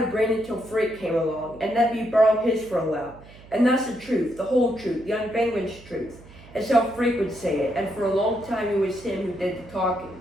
a brain until Freak came along and let me borrow his for a while. And that's the truth, the whole truth, the unvanquished truth. It's how Freak would say it, and for a long time it was him who did the talking.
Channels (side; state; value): right; noise; hum, 21 dB below the sound